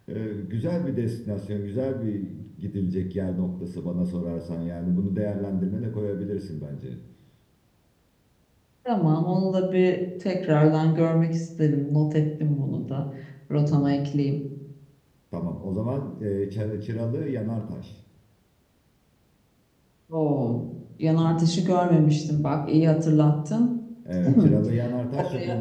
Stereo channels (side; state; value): both; identical; correlation 1.00